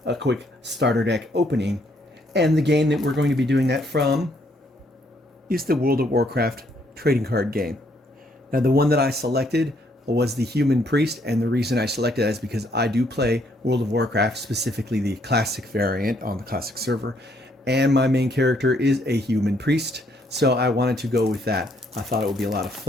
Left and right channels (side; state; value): both; normal; correlation 0.69